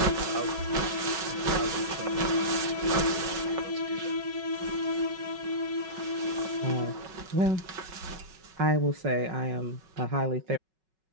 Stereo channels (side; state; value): left; late; 5.4 ms